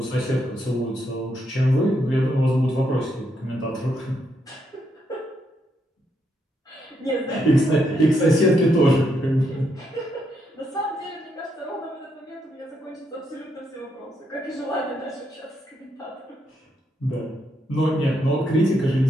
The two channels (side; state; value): both; normal; correlation 0.78